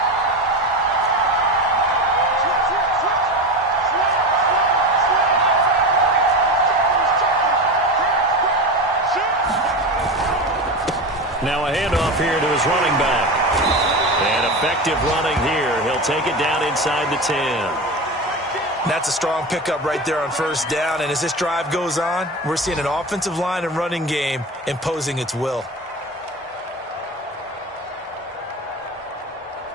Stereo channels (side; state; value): both; normal; correlation 0.24